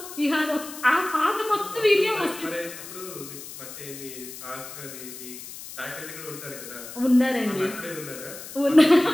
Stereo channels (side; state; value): left; noise; hiss, 13 dB below the sound